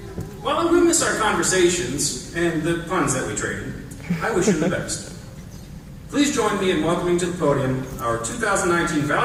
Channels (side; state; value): both; identical; correlation 1.00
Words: While I will miss our conversations and the puns that we traded, I wish him the best. Please join me in welcoming to the podium our 2019